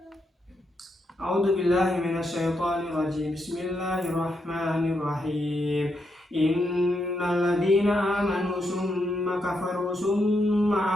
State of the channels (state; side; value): normal; both; correlation 0.81